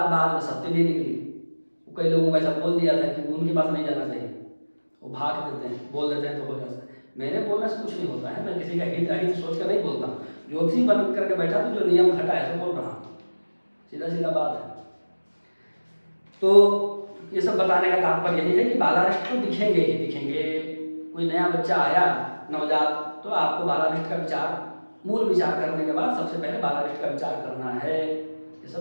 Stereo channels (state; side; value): inverted; both; correlation -1.00